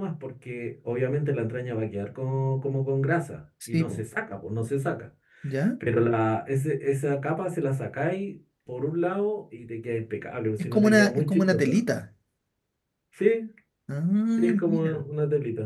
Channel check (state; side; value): identical; both; correlation 1.00